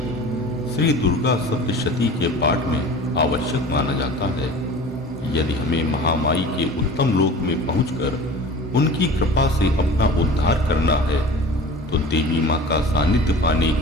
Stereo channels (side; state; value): both; normal; correlation 0.40